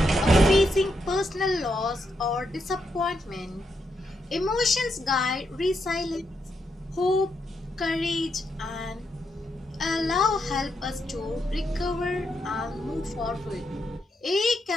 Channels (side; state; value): both; normal; correlation 0.81